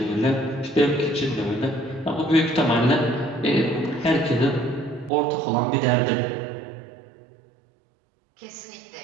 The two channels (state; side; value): drops out; left; at 5.1 s